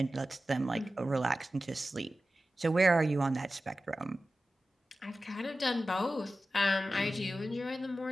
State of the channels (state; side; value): normal; both; correlation 0.94